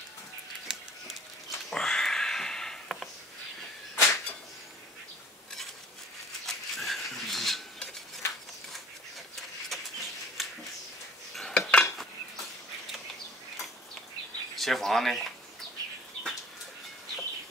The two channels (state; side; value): normal; both; correlation 0.49